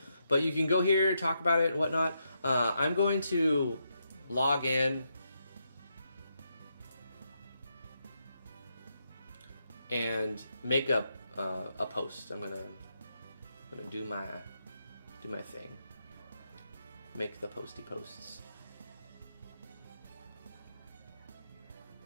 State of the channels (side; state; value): both; inverted; correlation -0.82